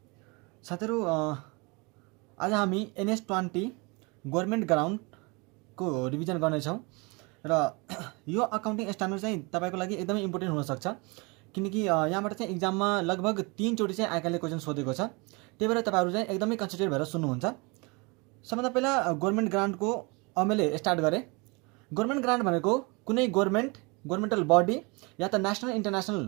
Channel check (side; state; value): left; quieter; 28.4 dB